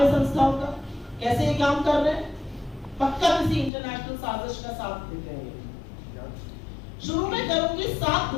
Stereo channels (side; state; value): right; drops out; at 3.7 s